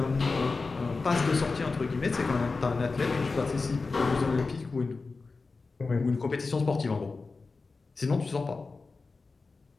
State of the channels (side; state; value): right; quieter; 4.0 dB